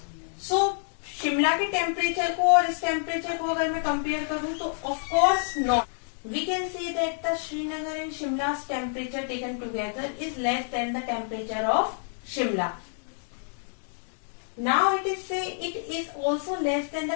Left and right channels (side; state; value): right; silent; 59 dB below the other